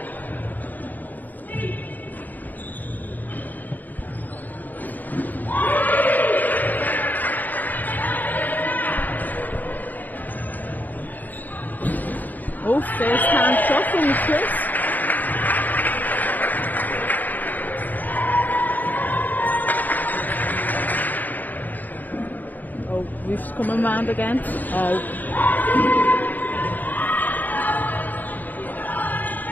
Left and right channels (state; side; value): late; right; 0.084 ms